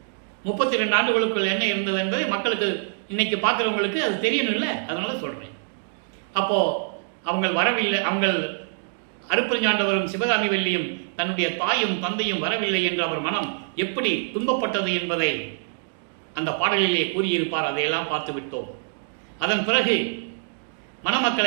32 ஆண்டுகளுக்குள் என்ன இருந்தது என்பதை மக்களுக்கு இன்னைக்கு பார்க்குறவங்களுக்கு அது தெரியணும் இல்லை, அதனால சொல்கிறேன். அப்போது அவங்க வரவில்லை, அவங்க அருப்பஞ்சாண்டவரும் சிவகாமி வள்ளியும் தன்னுடைய தாயும் தந்தையும் வரவில்லை என்று அவர் மனம் எப்படி துன்பப்பட்டது என்பதை அந்த பாடலிலே கூறியிருப்பார். அதையெல்லாம் பார்த்து விட்டோம். அதன் பிறகு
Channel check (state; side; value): silent; left; digital silence